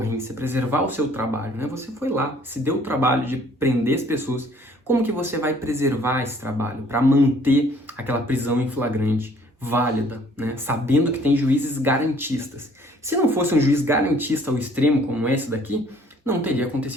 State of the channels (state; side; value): normal; both; correlation 0.58